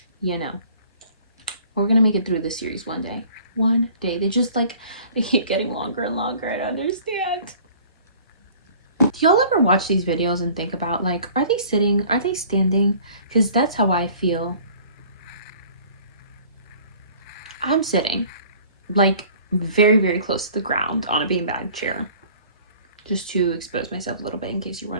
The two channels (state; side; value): inverted; both; correlation -0.50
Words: you know. We're gonna make it through the series one day. One day. They just like, they keep getting longer and longer. I don't understand. Do y'all ever watch these videos and think about like, are they sitting? Are they standing? Because that's how I feel. I'm sitting like very, very close to the ground on a beanbag chair. Just to expose myself a little bit in case you're